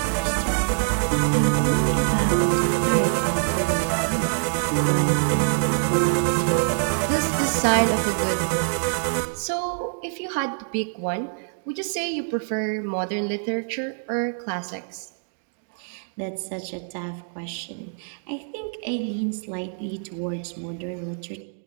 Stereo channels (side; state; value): left; silent; digital silence